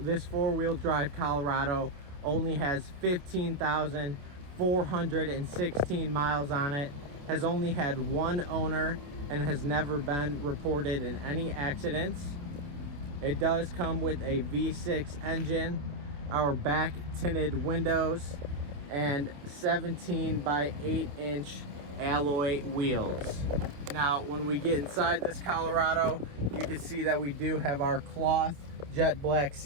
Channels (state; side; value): late; left; 28 ms